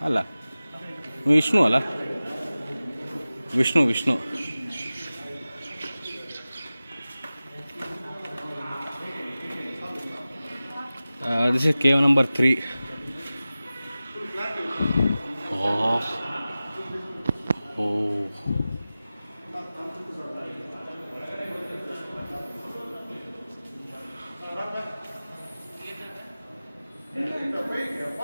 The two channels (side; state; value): both; inverted; correlation -0.97